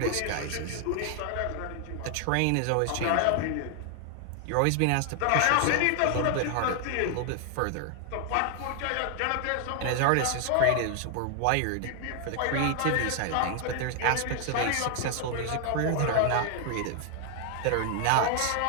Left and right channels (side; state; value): both; different; correlation 0.00